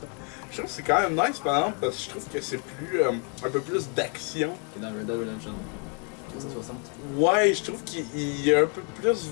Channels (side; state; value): right; quieter; 38.0 dB